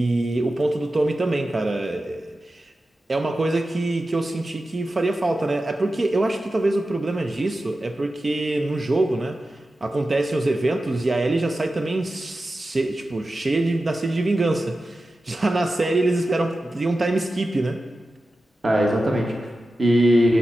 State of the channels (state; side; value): normal; both; correlation 0.93